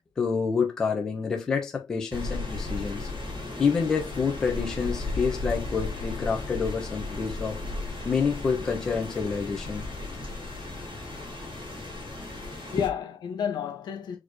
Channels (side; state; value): right; quieter; 4.8 dB